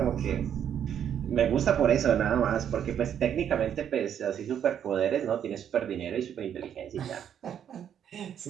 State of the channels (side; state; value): left; quieter; 9.1 dB